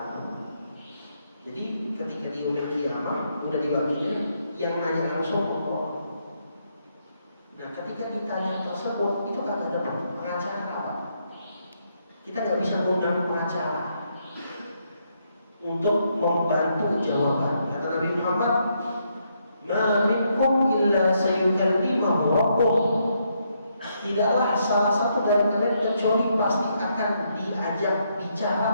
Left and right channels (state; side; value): inverted; both; correlation -0.76